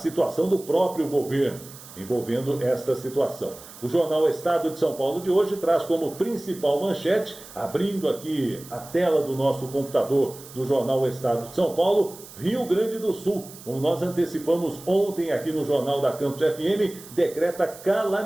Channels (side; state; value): right; noise; hiss, 18 dB below the sound